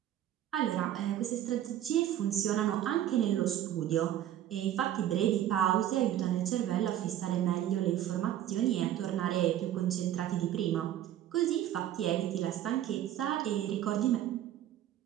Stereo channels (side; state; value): left; quieter; 11.8 dB